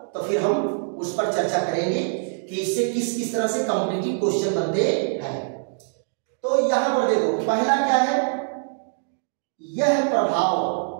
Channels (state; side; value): silent; left; digital silence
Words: तो फिर हम उस पर चर्चा करेंगे कि इससे किस किस तरह से कॉम्पिटिटिव क्वेश्चन बनते हैं। तो यहां पर देखो, पहला क्या है? यह प्रभाव